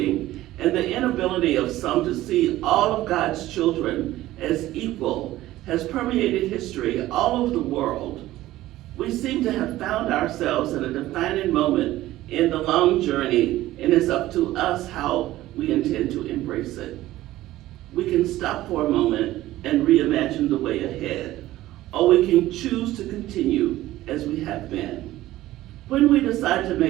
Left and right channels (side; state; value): left; quieter; 15.7 dB